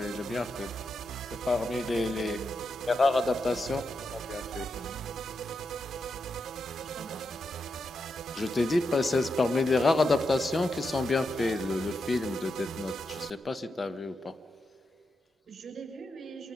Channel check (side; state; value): both; normal; correlation 0.85